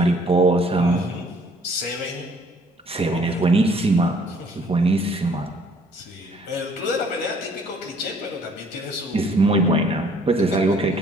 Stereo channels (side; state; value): both; normal; correlation 0.60